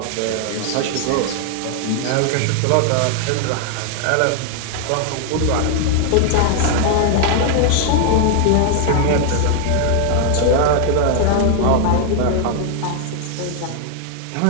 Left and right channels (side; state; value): both; different; correlation 0.00